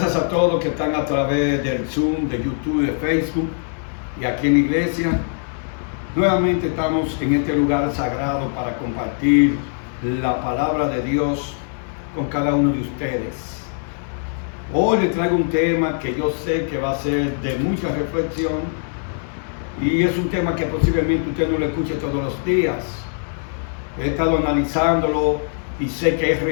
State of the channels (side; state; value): right; silent; digital silence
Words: a todos que están a través del Zoom, de YouTube, de Facebook y aquí en la iglesia. Nuevamente estamos en este lugar sagrado para compartir la palabra de Dios con cada uno de ustedes. Hoy les traigo un tema que yo sé que va a ser de mucha reflexión y es un tema que posiblemente usted no lo escuche todos los días. He estado analizándolo y sé que es